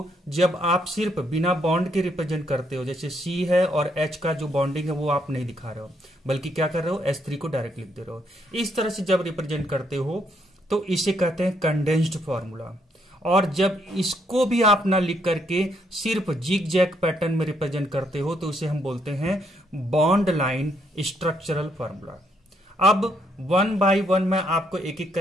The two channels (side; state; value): both; normal; correlation 0.73